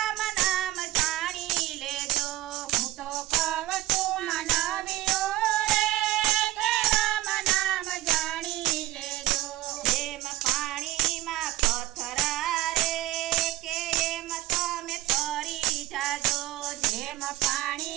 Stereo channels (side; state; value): left; quieter; 16.4 dB